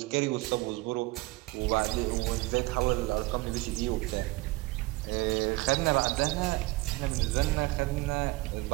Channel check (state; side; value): quieter; left; 21.3 dB